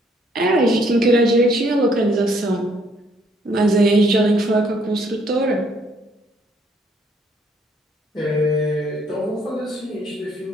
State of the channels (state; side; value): normal; both; correlation 0.66